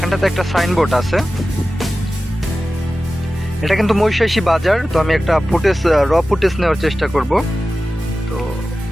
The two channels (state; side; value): normal; both; correlation 0.95